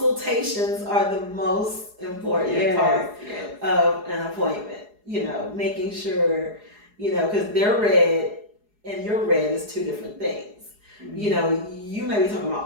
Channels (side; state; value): left; late; 4.8 ms